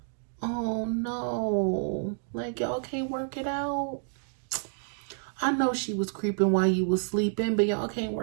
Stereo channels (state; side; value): silent; left; digital silence